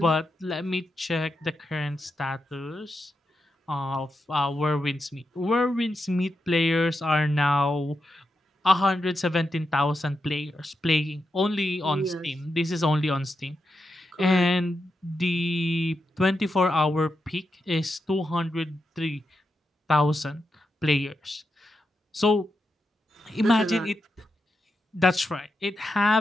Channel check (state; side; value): normal; both; correlation 0.86